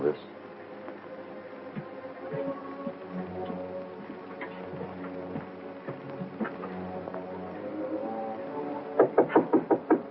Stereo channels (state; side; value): identical; both; correlation 1.00